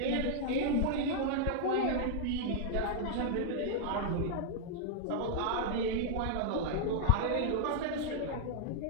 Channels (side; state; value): both; different; correlation -0.01